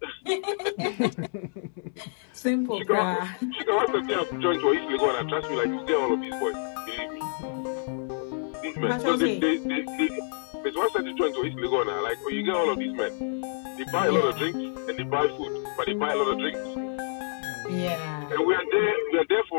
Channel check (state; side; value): silent; right; digital silence